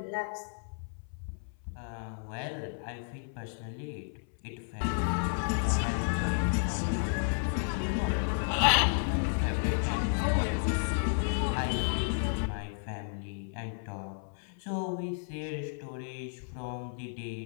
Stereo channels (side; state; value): right; silent; 56 dB below the other